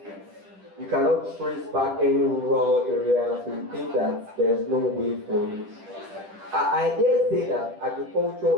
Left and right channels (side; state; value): left; late; 10 ms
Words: you cannot trace back any rural area, so you think that there's no way for you. I dare say that